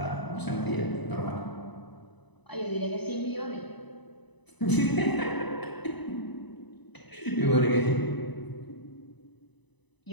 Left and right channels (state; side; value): late; right; 1.0 ms